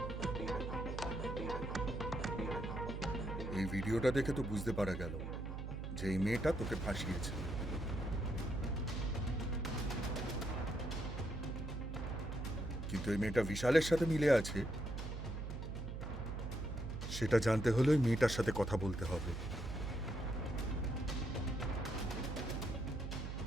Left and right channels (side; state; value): right; noise; hum, 5 dB below the sound